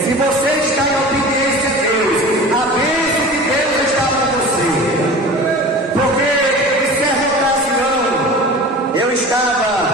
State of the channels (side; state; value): both; normal; correlation 0.37